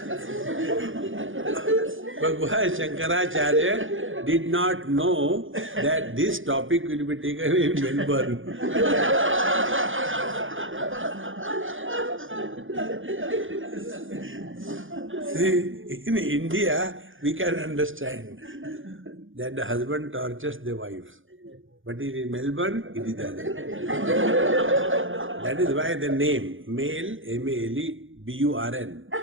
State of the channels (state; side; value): late; left; 0.58 ms